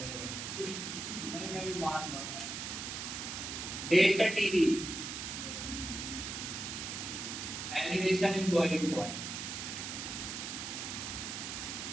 नहीं मैं भी मान रहा हूँ। Delta TV elevation in boiling point.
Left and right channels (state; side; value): noise; right; hiss, 5 dB below the sound